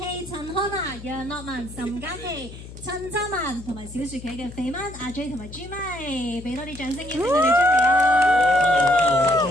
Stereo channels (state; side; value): noise; left; hum, 15 dB below the sound